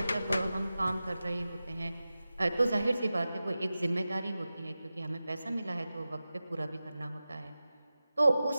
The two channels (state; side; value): inverted; both; correlation -0.95